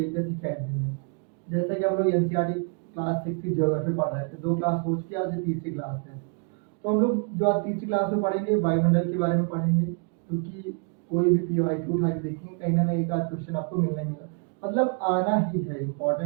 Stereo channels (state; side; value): quieter; left; 36.7 dB